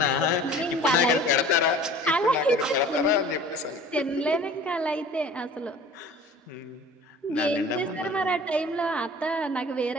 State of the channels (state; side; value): normal; both; correlation 0.45